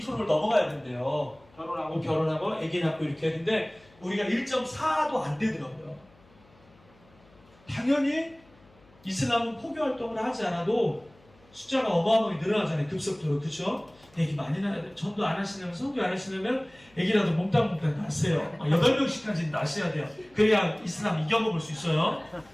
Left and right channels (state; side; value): noise; left; hum, 29 dB below the sound